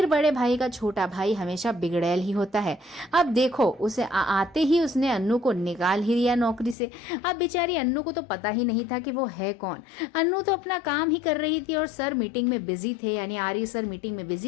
बड़े भाई का छोटा भाई हमेशा बिगड़ैल ही होता है। अब देखो, उसे आते ही उसने अन्नू को निकाल ही दिया नौकरी से। अब बेचारी अन्नू को तो पता ही नहीं था कि वो है कौन। अन्नू तो अपना काम ही कर रही थी और सर मीटिंग में बिजी थे, यानी आर्य सर मीटिंग में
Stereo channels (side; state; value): right; drops out; at 6.8 s